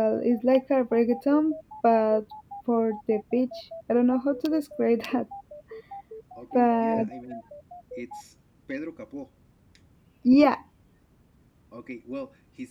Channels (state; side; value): identical; both; correlation 1.00